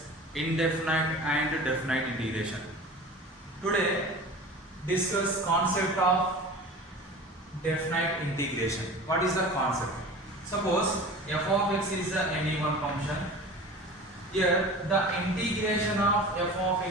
indefinite and definite integration. Today discuss concept of definite integration. What is the concept? Suppose f of x is any one function. Here the integration of f of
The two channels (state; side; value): normal; both; correlation 0.37